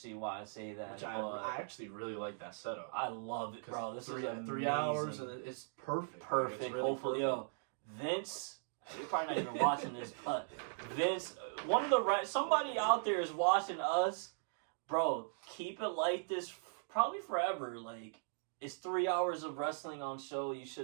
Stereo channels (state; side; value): silent; left; digital silence